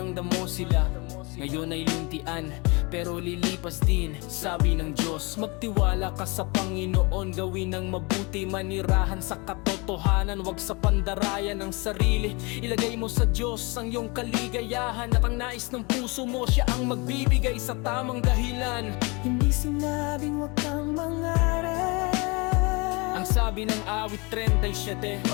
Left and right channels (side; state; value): right; quieter; 28.1 dB